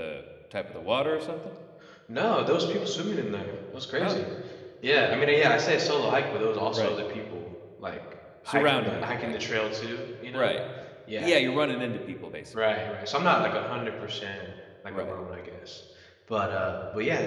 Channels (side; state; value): both; identical; correlation 1.00